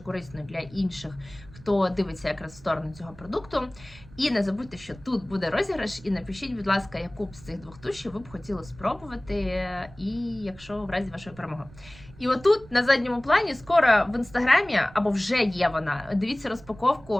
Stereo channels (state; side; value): noise; right; rumble, 21 dB below the sound